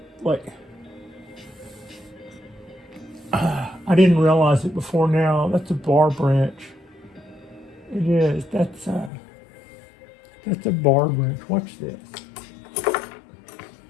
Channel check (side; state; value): right; drops out; at 9.1 s